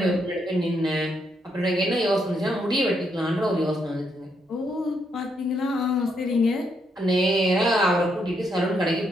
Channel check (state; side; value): normal; both; correlation 0.77